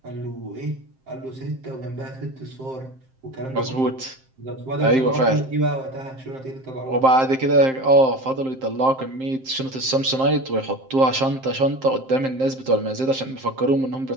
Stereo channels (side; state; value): left; late; 7.6 ms